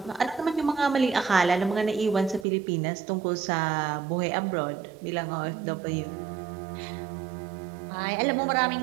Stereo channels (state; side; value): drops out; left; at 2.5 s